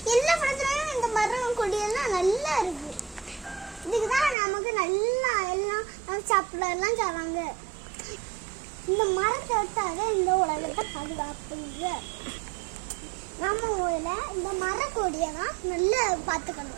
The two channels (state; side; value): drops out; left; at 4.4 s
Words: எல்லா படத்துலையும் இந்த மரம் கொடியெல்லாம் நல்லா இருக்கு. இதுக்கு தான் நமக்கு நல்லா எல்லாம் சாப்பிடலாம் தராங்க. இந்த மரத்தை விட்டாத இந்த உலகத்தை பாதுகாப்புங்க. நம்ம ஊரில் இந்த மரக்கொடியை தான் நல்லா